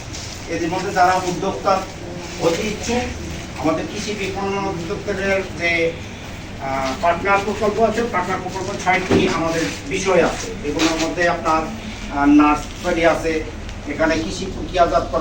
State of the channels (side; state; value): both; identical; correlation 1.00